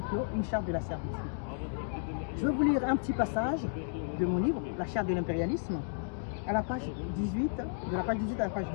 clos, une charte de la servitude. Je vais vous lire un petit passage de mon livre, La Charte de l'impérialisme, à la page 18, de la page 18 à la page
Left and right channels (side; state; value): right; silent; digital silence